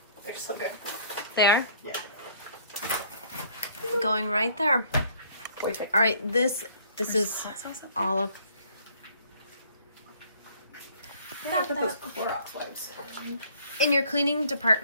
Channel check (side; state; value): both; inverted; correlation -0.58